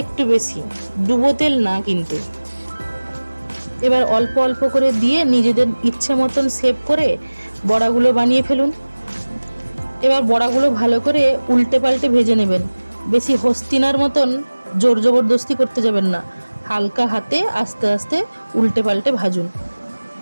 একটু বেশি, ডুবো তেল না কিন্তু। এবার অল্প অল্প করে দিয়ে নিজেদের ইচ্ছে মতন শেপ করে বড়াগুলো বানিয়ে ফেলুন। এবার বড়াগুলো ভালো করে উল্টে পাল্টে ভেজে নেবেন। বেশি হস্তিনার মতন জোর জবরদস্তি করতে যাবেন না, হালকা হাতে আস্তে আস্তে উল্টে পাল্টে ভাজুন।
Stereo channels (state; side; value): inverted; both; correlation -1.00